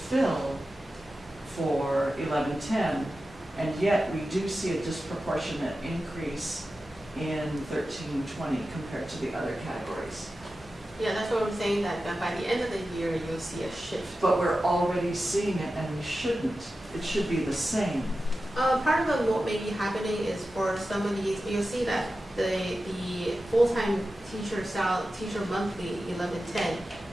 for 1110, and yet we do see a disproportionate increase in 1320 compared to the other categories. Yeah, that's what I'm saying, that by the end of the year, you'll see a shift. But we're already seeing it, and we shouldn't. It should be the same. Part of what may be happening is for some of these, you'll see that the full-time teacher monthly 1110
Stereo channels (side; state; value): both; normal; correlation 0.93